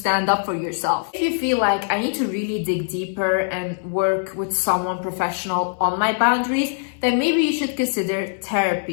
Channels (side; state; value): right; silent; 64 dB below the other